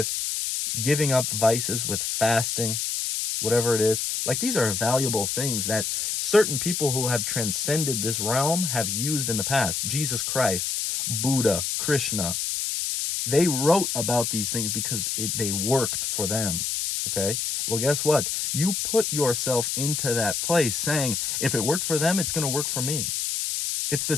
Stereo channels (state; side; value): noise; left; hiss, 1 dB below the sound